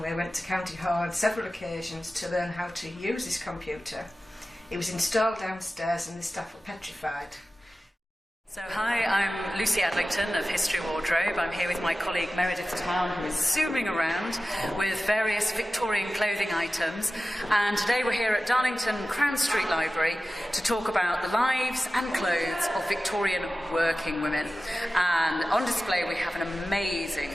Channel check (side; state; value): both; normal; correlation 0.95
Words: went to County Hall on several occasions to learn how to use this computer. It was installed downstairs and the staff were petrified. So hi, I'm Lucy Adlington of History Wardrobe. I'm here with my colleague Meredith Town, who is zooming around with various Victorian clothing items. And today we're here at Darlington Crown Street Library to talk about the lives and clothes of Victorian working women. And on display we have an